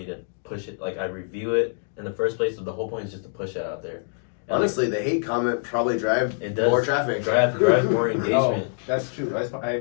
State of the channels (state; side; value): silent; right; digital silence